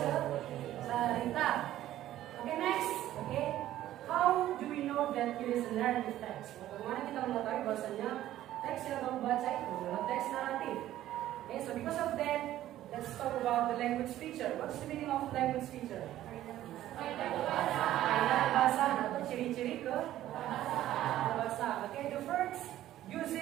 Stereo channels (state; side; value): quieter; left; 13.4 dB